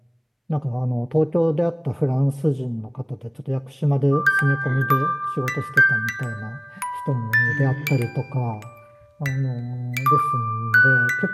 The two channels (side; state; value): both; identical; correlation 1.00